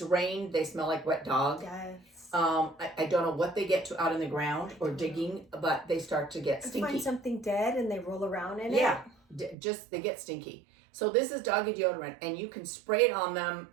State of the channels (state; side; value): drops out; left; at 9.6 s